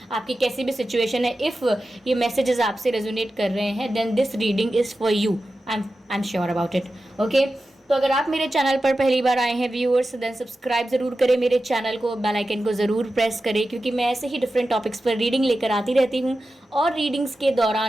आपकी कैसी भी सिचुएशन है, इफ़ ये मैसेजेस आपसे रेजोनेट कर रहे हैं then this reading is for you. I am sure about it. Okay, तो अगर आप मेरे चैनल पर पहली बार आए हैं व्यूअर्स, देन सब्सक्राइब ज़रूर करें मेरे चैनल को, बेल आइकन को ज़रूर प्रेस करें, क्योंकि मैं ऐसे ही डिफरेंट टॉपिक्स पर रीडिंग लेकर आती रहती हूँ। और रीडिंग्स के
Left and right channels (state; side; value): normal; both; correlation 0.93